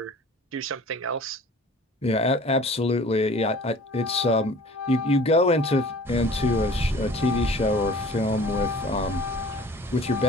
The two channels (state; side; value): normal; both; correlation 0.46